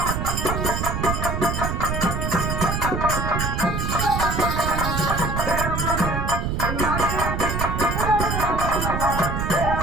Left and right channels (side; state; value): right; noise; rumble, 1 dB below the sound